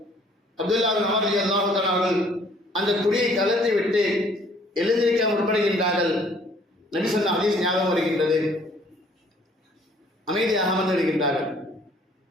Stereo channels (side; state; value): both; normal; correlation 0.59